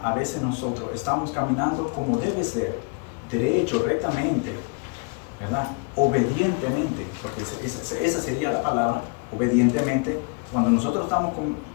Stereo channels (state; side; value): quieter; right; 33.8 dB